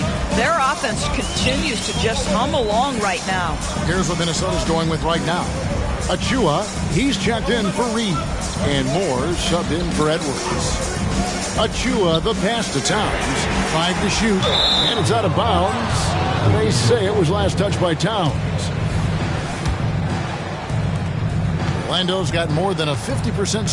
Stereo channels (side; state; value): both; identical; correlation 1.00